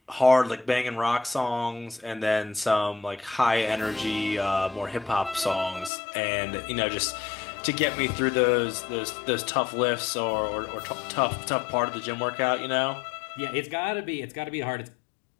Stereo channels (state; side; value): drops out; right; at 5.9 s